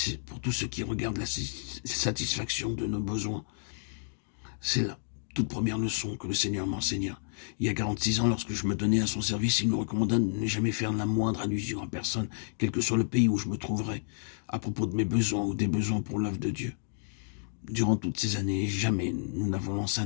qui regarde la satisfaction de nos besoins. C'est la toute première leçon que le Seigneur m'enseigna. Il y a 46 ans, lorsque je me donnais à son service, il me recommanda de ne jamais faire la moindre allusion à personne, quel que soit le pays où je me trouverais, à propos de mes besoins ou des besoins pour l'œuvre de Dieu. Durant toutes ces années, jamais nous n'avons lancé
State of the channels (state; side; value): silent; right; digital silence